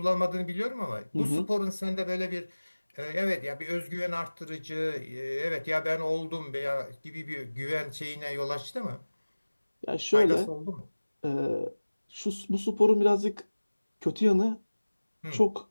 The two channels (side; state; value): both; inverted; correlation -1.00